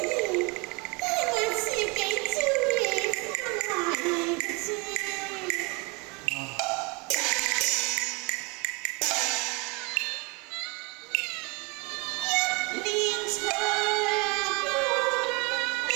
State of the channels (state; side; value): quieter; left; 28.9 dB